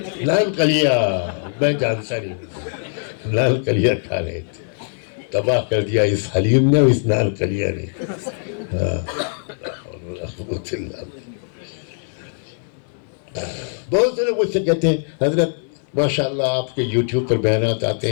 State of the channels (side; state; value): right; silent; 59 dB below the other